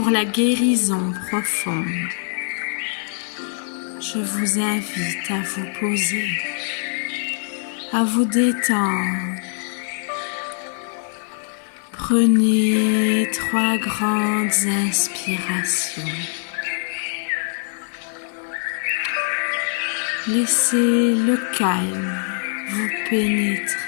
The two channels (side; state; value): right; silent; 64 dB below the other